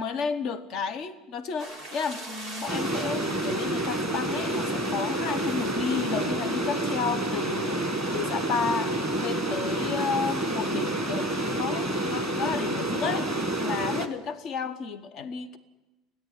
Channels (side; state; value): both; normal; correlation 0.40